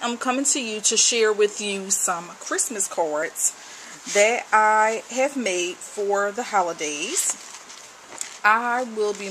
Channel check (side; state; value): both; identical; correlation 1.00